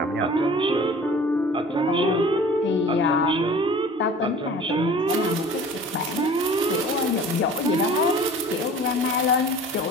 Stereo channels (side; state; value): both; normal; correlation 0.44